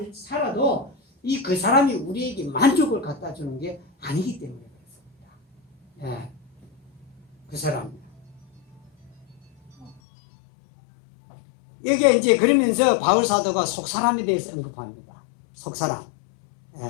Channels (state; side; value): drops out; right; at 10.0 s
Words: 살아도 그 사람이 우리에게 만족을 갖다 주는 게 아니기 때문에 그렇습니다. 예. 그 사람. 여기에 이제 그러면서 바울 사도가 속사람에 대해서 언급합니다. 속사람.